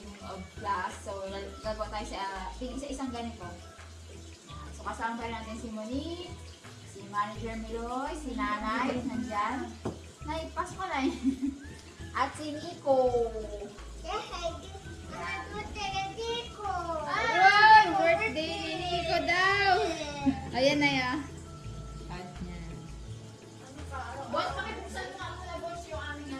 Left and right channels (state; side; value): identical; both; correlation 1.00